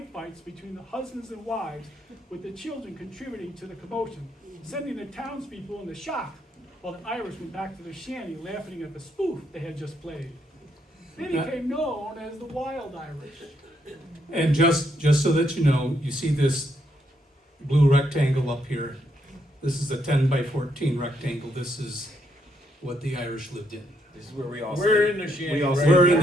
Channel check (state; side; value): normal; both; correlation 0.76